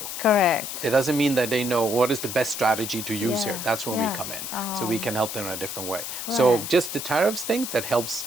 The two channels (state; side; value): noise; left; hiss, 6 dB below the sound